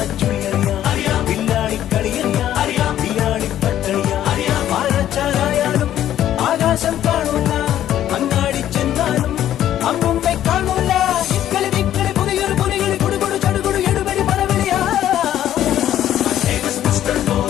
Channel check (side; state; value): right; quieter; 11.8 dB